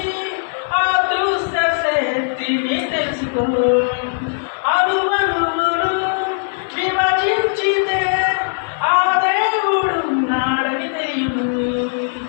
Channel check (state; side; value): silent; right; digital silence